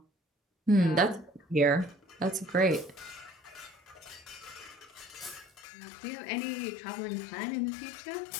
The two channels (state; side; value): drops out; right; at 5.7 s